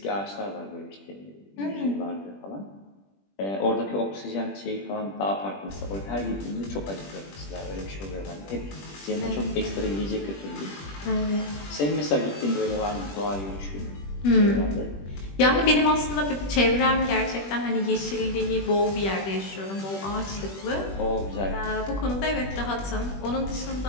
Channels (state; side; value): late; right; 21 ms